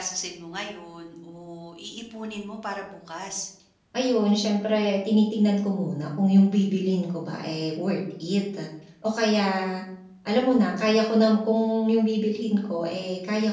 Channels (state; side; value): identical; both; correlation 1.00